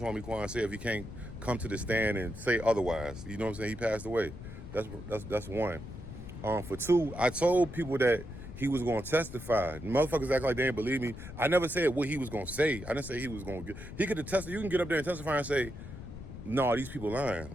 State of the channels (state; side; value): noise; left; rumble, 11 dB below the sound